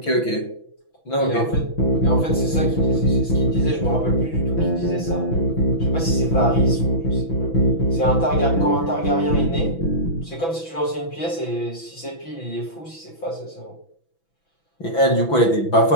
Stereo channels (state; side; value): late; right; 6.0 ms